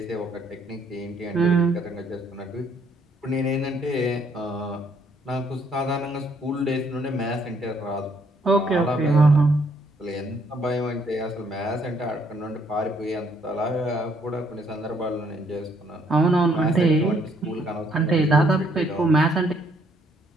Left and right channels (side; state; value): both; normal; correlation 0.68